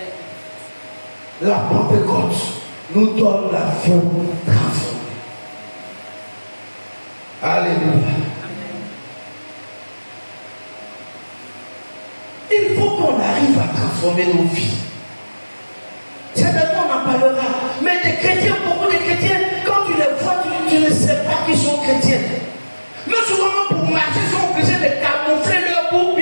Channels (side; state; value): both; inverted; correlation -1.00